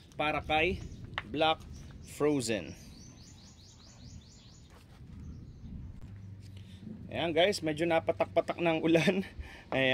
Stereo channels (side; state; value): both; identical; correlation 1.00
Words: para kay Black Frozen. Ayan guys, medyo napatak-patak ng ulan.